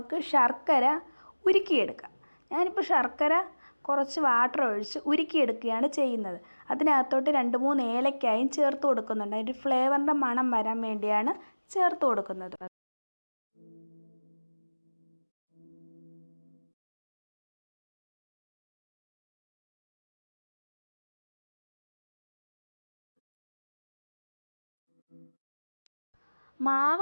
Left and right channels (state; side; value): inverted; both; correlation -1.00